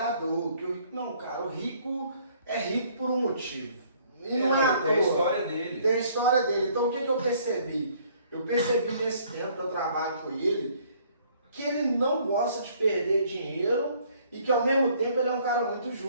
Que o rico, não, cara, o rico é rico por um motivo. E não é à toa. Tem a história dele. Tem a história dele. Então o que eu percebi? Eu percebi nesse tempo que eu trabalho com ele, que ele não gosta de perder dinheiro e que ao mesmo tempo ele é um cara muito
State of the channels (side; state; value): both; inverted; correlation -0.61